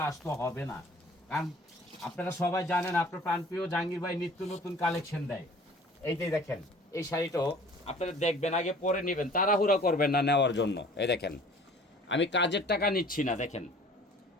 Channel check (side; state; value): both; normal; correlation 0.49